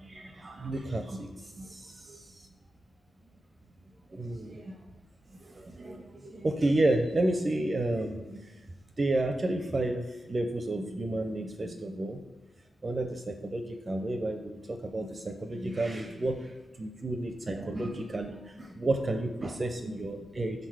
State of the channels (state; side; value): normal; both; correlation 0.91